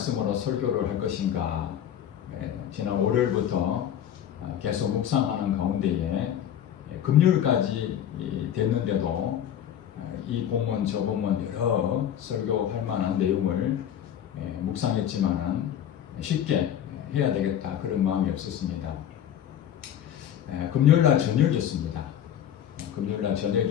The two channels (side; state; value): right; quieter; 10.2 dB